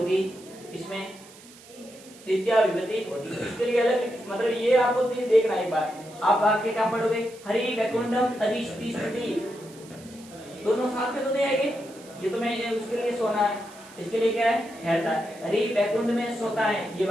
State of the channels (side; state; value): right; noise; hiss, 21 dB below the sound